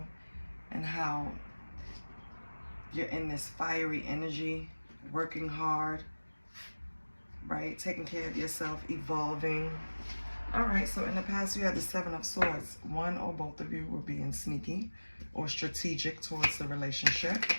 and how you're in this fiery energy, working hard, right? Taking care of yourself, evolving. All right, so in the past you had the Seven of Swords. One or both of you were being sneaky or strategic towards the relationship.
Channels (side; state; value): both; inverted; correlation -1.00